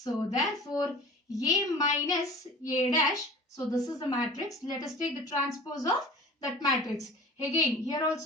therefore A minus A dash, so this is the matrix. Let us take the transpose of that matrix. Again here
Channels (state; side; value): normal; both; correlation 0.42